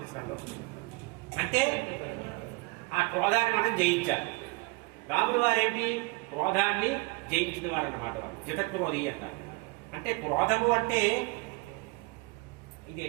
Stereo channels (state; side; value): quieter; left; 27.0 dB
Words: అంటే ఆ క్రోధాన్ని మనం జయించాలి. రాముల వారేంటి? క్రోధాన్ని జయించిన వారు అన్నమాట. వారు జితక్రోధి అంటారు. అంటే క్రోధము అంటే ఇది